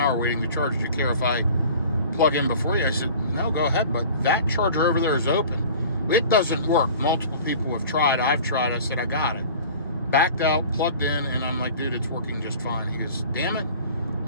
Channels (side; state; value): both; inverted; correlation -0.43